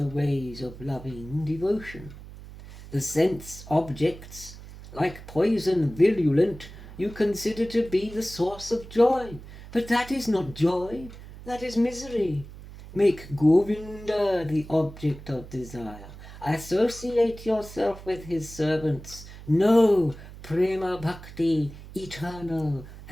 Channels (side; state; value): right; noise; hum, 15 dB below the sound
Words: ways of loving devotion. The sense objects, like poison virulent, you consider to be the source of joy, but that is not joy, that is misery. Make Govinda the object of desire. Associate yourself with his servants. Know Prema Bhakti, eternal